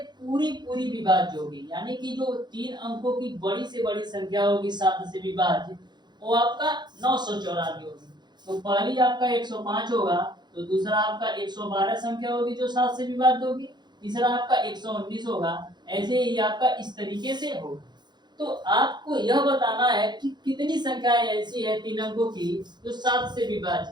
पूरी विभाज्य होगी। यानी कि जो 3 अंकों की बड़ी से बड़ी संख्या होगी 7 से विभाज्य, वो आपका 994 होगी। तो पहली आपका 105 होगा, तो दूसरा आपका 112 संख्या होगी जो 7 से विभाज्य होगी, तीसरा आपका 119 होगा। ऐसे ही आपका इस तरीके से होगा। तो आपको यह बताना है कि कितनी संख्याएं ऐसी है 3 अंकों की जो 7 से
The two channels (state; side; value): late; left; 0.21 ms